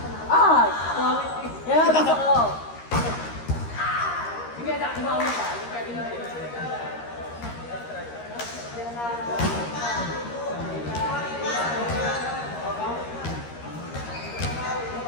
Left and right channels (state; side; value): late; right; 13 ms